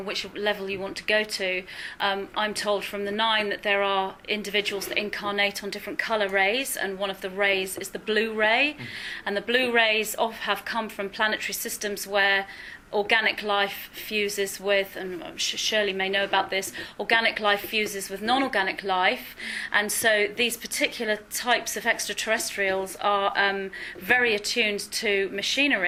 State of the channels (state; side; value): identical; both; correlation 1.00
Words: which level you want to go to, I'm told from the 9 that there are individuals that incarnate on different colour rays, and one of the rays is the blue ray. And the blue rays have come from planetary systems where organic life fuses with, and Shirley may know about this, organic life fuses with non-organic life, and so these particular types of extraterrestrials are very attuned to